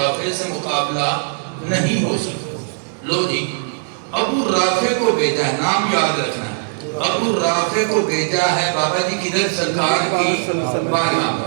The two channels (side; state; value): left; silent; 66 dB below the other